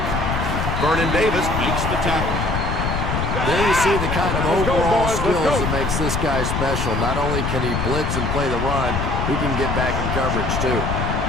Vernon Davis makes the tackle. There you see the kind of overall skills that makes this guy special. Not only can he blitz and play the run, he can get back in coverage too.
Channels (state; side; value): noise; left; rumble, 1 dB below the sound